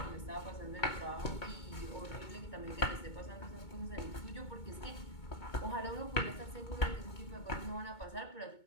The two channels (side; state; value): right; late; 2.2 ms